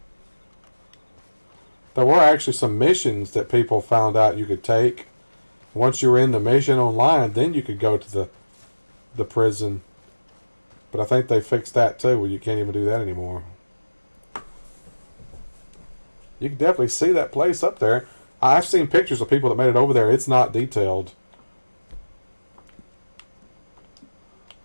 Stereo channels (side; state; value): both; inverted; correlation -1.00